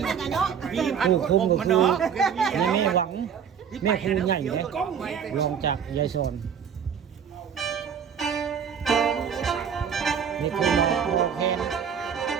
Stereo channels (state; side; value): quieter; left; 7.6 dB